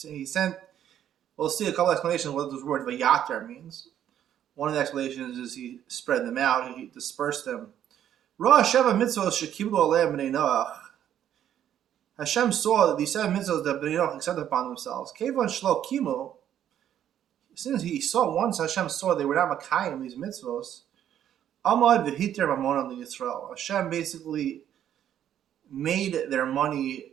He sent. We'll see a couple explanations of what this word v'yatar means. One of the explanations is he spread them out, he dispersed them. Ra sheva mitzvos shekiblu aleim b'nei Noach. Hashem saw that these 7 mitzvahs that Bnei Noach accepted upon themselves. Kevan shlo kimu. Since he saw once, Hashem saw they were not makayim these mitzvahs. Amad v'hiter mamonan liyisrael. Hashem basically made their money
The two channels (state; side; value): quieter; left; 10.4 dB